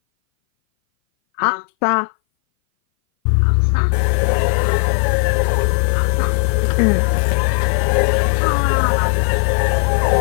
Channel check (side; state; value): right; silent; 61 dB below the other